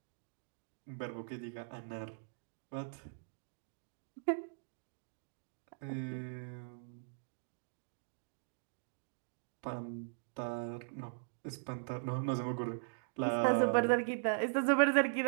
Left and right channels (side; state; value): left; silent; digital silence